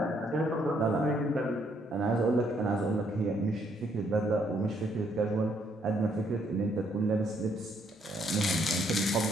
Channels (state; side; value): normal; both; correlation 0.70